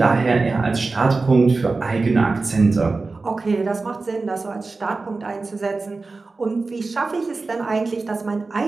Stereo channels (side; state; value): left; quieter; 3.8 dB